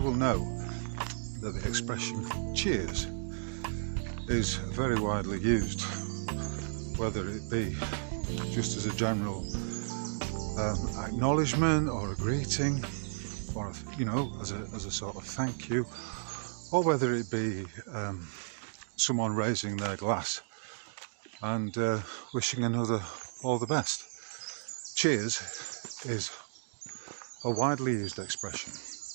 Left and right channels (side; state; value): left; silent; digital silence